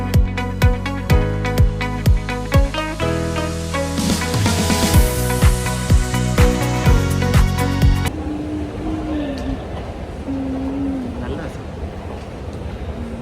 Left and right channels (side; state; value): both; identical; correlation 1.00